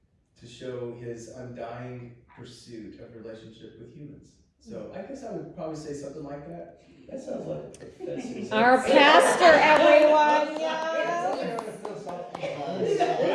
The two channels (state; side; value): identical; both; correlation 1.00